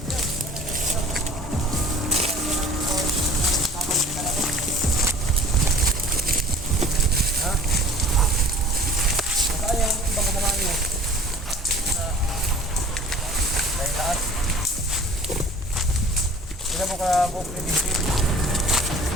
Ha? Saan yung ibang naman nyo? Dahil lahat. Sila mo ka buong kredisip.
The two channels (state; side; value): normal; both; correlation 0.47